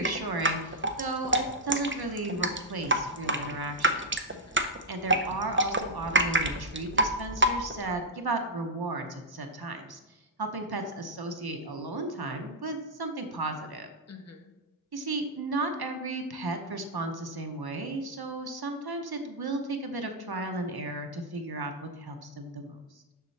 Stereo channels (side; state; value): both; normal; correlation -0.06